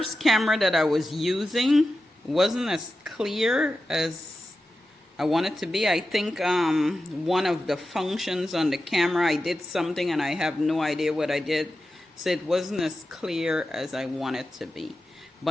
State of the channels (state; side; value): normal; both; correlation 0.92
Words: camera that I was using wasn't as clear as I want it to be. I think one of the functions on the camera, I did something and I have no idea what I did, so it wasn't as clear as I want it to be.